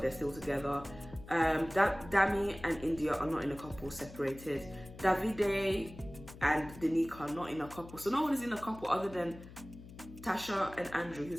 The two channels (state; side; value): noise; left; hum, 16 dB below the sound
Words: they're still together. Dami and Indiyah are not in a couple, separated. Davide and Danica are not in a couple. So no one is in a couple other than Tasha and Andrew,